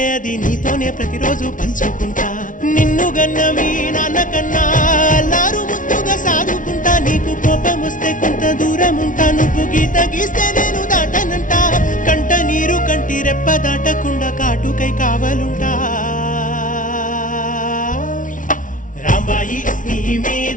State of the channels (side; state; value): right; late; 0.38 ms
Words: అది నీతోనే ప్రతిరోజు పంచుకుంటా. నిన్ను గన్న మీ నాన్నకన్నా లారు ముద్దుగా సాదుకుంటా. నీకు కోపం వస్తే కొంత దూరం ఉంటా, నువ్వు గీత గీస్తే నేను దాటనంట. కంట నీరు కంటి రెప్ప దాటకుండా కాటుకై కావలుంటా. రాంబాయి నీ